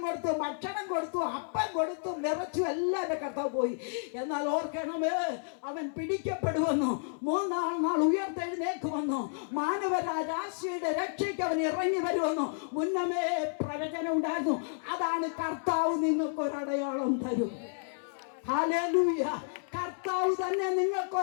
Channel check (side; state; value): right; silent; digital silence